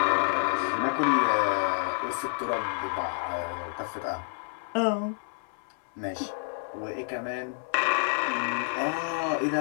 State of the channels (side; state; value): right; silent; 59 dB below the other